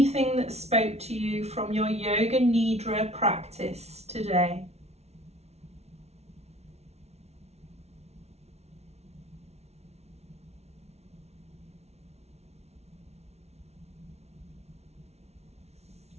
that spoke to you from your Yoga Nidra practice today.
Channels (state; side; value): late; left; 0.31 ms